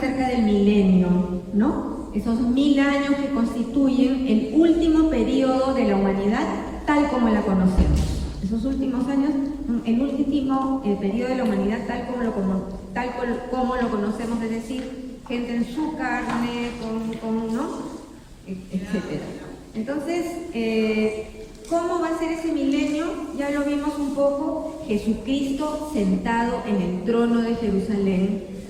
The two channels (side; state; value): both; identical; correlation 1.00